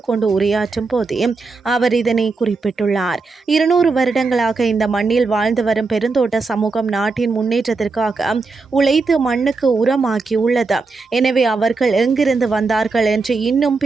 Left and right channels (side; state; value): left; quieter; 4.0 dB